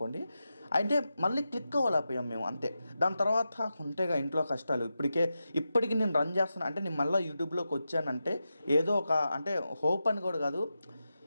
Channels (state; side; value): inverted; both; correlation -0.90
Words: అంటే మళ్ళీ క్లిక్ అవ్వలేకపోయాం మేము, అంతే. దాని తర్వాత ఉంటేగా ఇంట్లో కష్టాలు. ఇప్పటికీ నేను రన్ చేస్తాను అంటే, నేను మళ్ళీ యూట్యూబ్లోకి వచ్చానంటే ఏదో ఒక అంటే హోప్ అని కూడా కాదు,